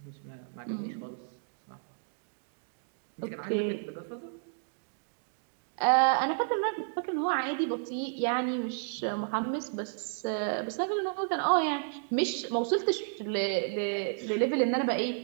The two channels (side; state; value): left; silent; digital silence